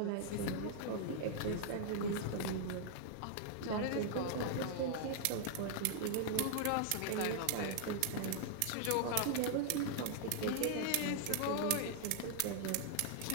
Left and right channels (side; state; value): both; different; correlation -0.01